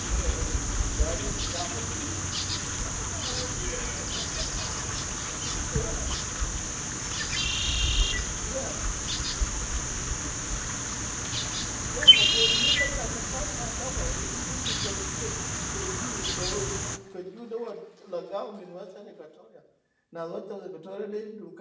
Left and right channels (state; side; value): identical; both; correlation 1.00